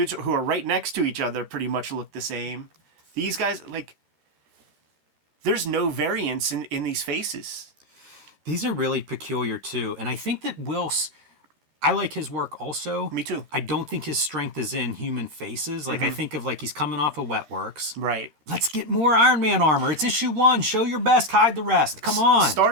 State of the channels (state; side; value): late; left; 13 ms